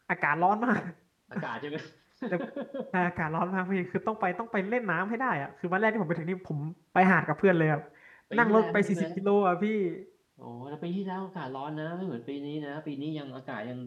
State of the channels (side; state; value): both; identical; correlation 1.00